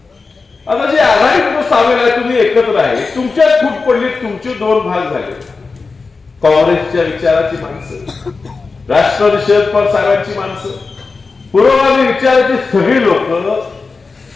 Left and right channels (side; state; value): right; quieter; 4.3 dB